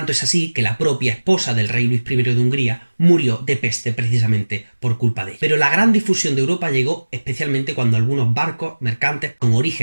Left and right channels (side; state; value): both; inverted; correlation -1.00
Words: es así que la propia esposa del rey Luis I de Hungría murió de peste precisamente por culpa de ella. Pero la gran difusión de Europa llegó especialmente cuando algunos barcos mercantes con